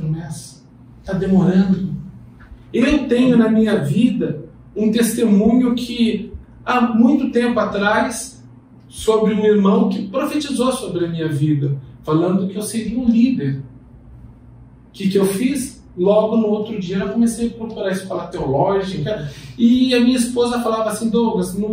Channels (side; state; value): both; identical; correlation 1.00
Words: Está demorando. Eu tenho na minha vida um testemunho que há muito tempo atrás, sobre um irmão que profetizou sobre a minha vida, falando que eu seria um líder. O que eu fiz? Logo no outro dia eu comecei a procurar a escola teológica, e a minha esposa falava assim: Douglas, no